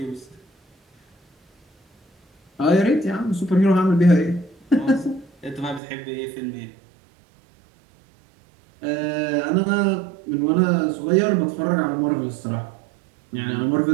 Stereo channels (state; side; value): drops out; left; at 5.8 s